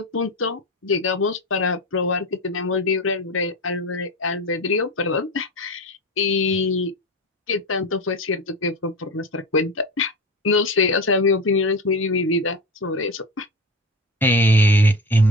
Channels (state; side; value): normal; both; correlation 0.24